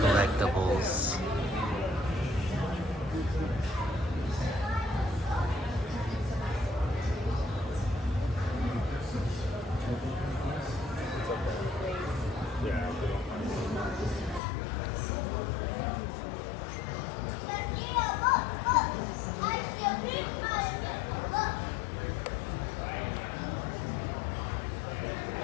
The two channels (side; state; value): right; drops out; at 14.4 s